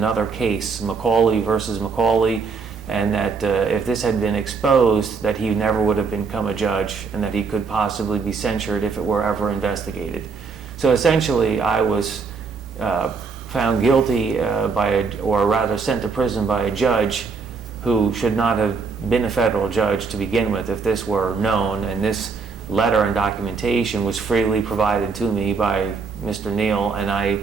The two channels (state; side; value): quieter; left; 4.9 dB